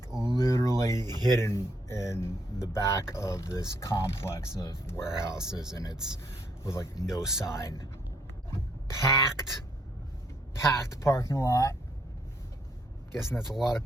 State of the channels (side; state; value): both; normal; correlation 0.71